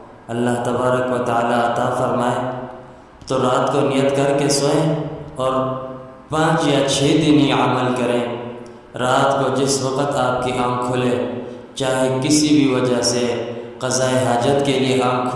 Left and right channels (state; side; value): identical; both; correlation 1.00